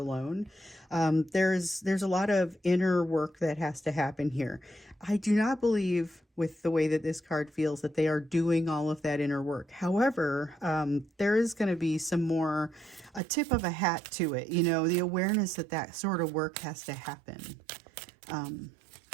There's a lot of inner work that has to happen here. I do not believe, with the way that this card feels, that they are doing all of that inner work. However, there is going to be some more, a tip of a hat to it, you know, the awareness that that sort of work has to happen.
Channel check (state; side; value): drops out; left; at 13.2 s